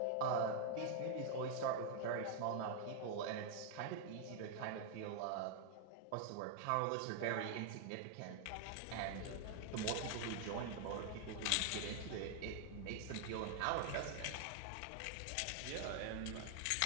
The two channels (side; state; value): both; different; correlation 0.00